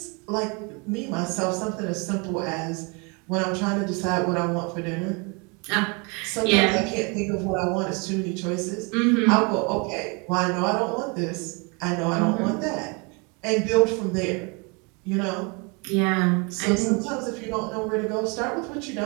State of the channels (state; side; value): quieter; left; 31.3 dB